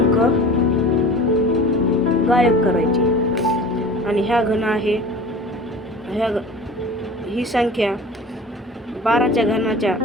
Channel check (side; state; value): both; normal; correlation 0.39